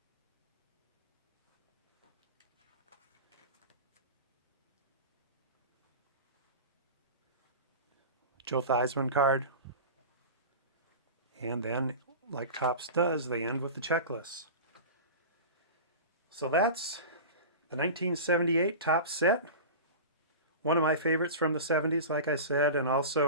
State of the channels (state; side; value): inverted; both; correlation -0.31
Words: Joe Theismann card. And then, like Topps does, they end with the checklist. So that's the 1978 Topps set. One of my favorites from the 70s, like I said, and